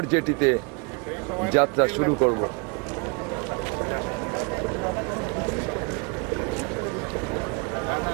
জেটিতে যাত্রা শুরু করব।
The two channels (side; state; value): left; quieter; 32.6 dB